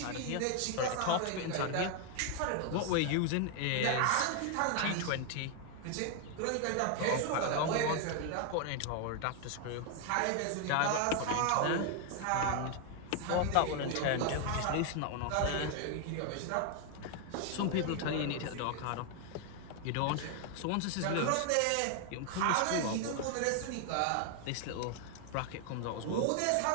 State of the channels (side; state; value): both; different; correlation 0.00